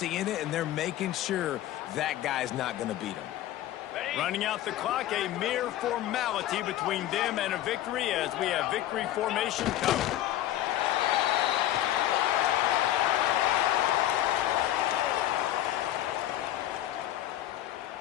it, and they're making sure that guy's not going to beat him. Running out the clock, a mere formality between them and a victory as we have victory formation covered.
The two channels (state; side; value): quieter; right; 13.4 dB